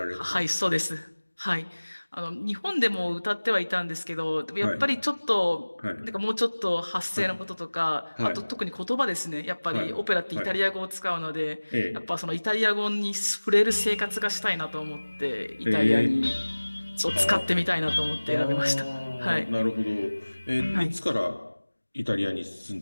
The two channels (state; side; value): inverted; both; correlation -1.00